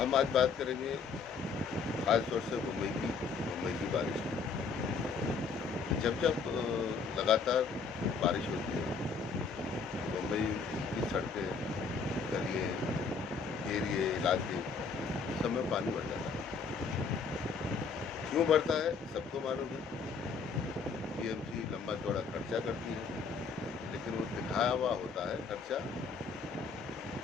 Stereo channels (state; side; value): quieter; right; 5.1 dB